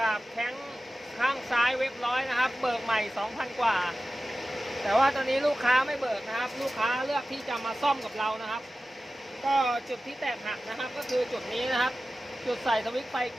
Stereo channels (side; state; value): both; normal; correlation 0.95